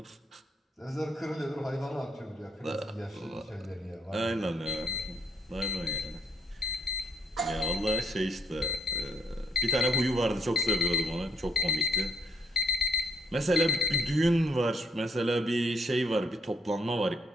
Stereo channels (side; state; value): both; normal; correlation 0.69